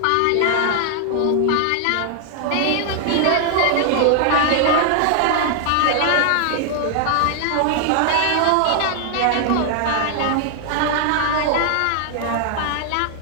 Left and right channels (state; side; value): different; both; correlation 0.00